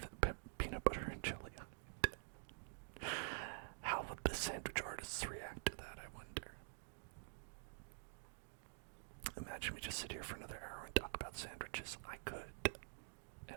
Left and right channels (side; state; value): left; silent; digital silence